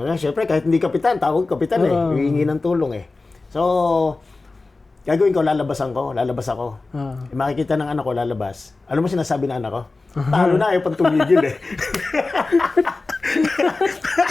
Siyempre, kahit hindi kapitan, tawag kapitan hihingi ng tulong eh. So, gagawin ko, lalabas ako. Makikita ng anak ko, lalabas. Alam mo sinasabi ng anak ko? Talo na, ayaw pang tumigil eh.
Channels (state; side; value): quieter; right; 3.5 dB